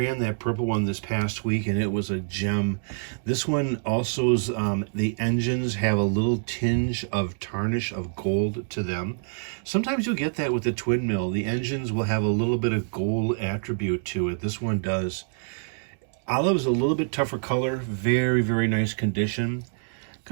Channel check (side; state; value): left; silent; digital silence